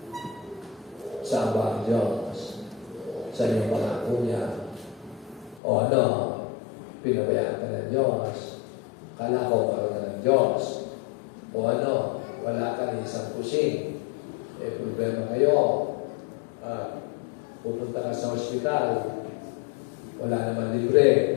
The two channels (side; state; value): right; drops out; at 5.6 s